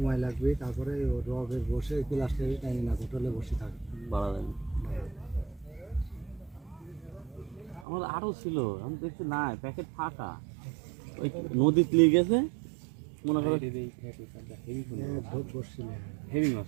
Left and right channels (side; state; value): left; drops out; at 7.9 s